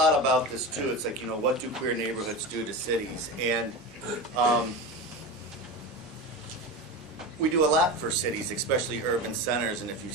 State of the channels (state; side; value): normal; both; correlation 0.24